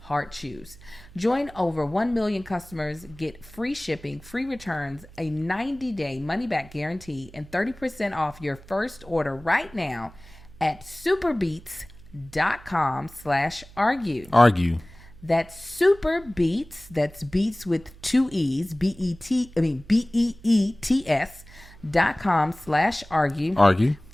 Chews. Join over 1 million customers, get free shipping, free returns, a 90-day money-back guarantee, and 30% off your first order right now at superbeets.com/argue. Argue. That's SuperBeets. That's beets with 2 E's. BEETS.com/argue. Argue.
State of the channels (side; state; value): right; noise; hum, 21 dB below the sound